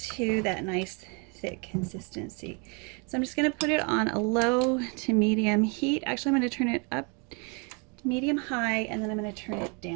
that nice thick consistency. So I'm just going to put it on a low to medium heat. Actually, I'm going to turn it up to medium high, and then I'm going to turn it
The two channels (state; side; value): quieter; left; 34.0 dB